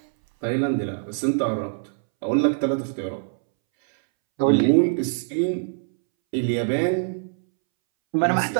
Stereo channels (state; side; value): silent; left; 63 dB below the other